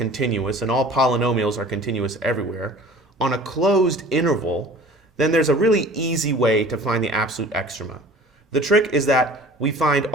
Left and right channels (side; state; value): both; normal; correlation 0.45